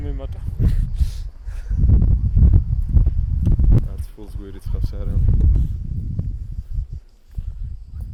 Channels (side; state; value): both; identical; correlation 1.00